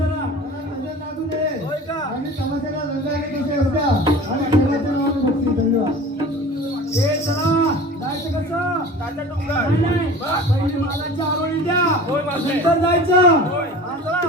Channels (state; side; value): normal; both; correlation 0.39